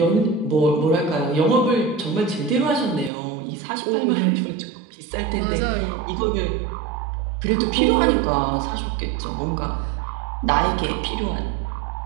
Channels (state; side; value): drops out; left; at 3.1 s